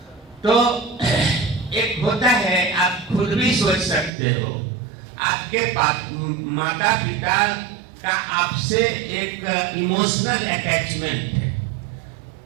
तो एक होता है, आप खुद भी सोच सकते हो, आपके माता पिता का आपसे एक इमोशनल अटैचमेंट है।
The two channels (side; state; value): left; drops out; at 4.1 s